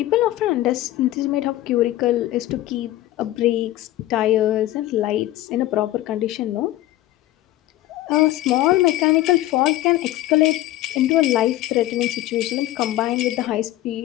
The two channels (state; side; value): quieter; right; 15.2 dB